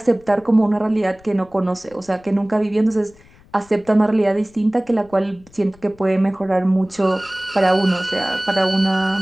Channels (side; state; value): left; noise; rumble, 27 dB below the sound